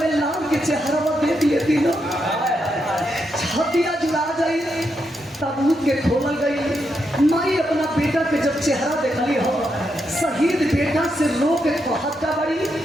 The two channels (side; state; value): both; normal; correlation 0.82